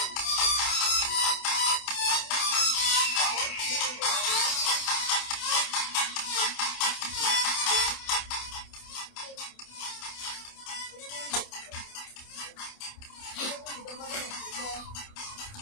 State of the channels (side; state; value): right; late; 28 ms